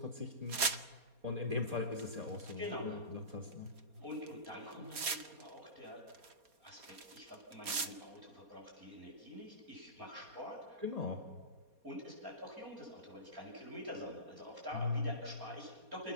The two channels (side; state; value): left; late; 4.2 ms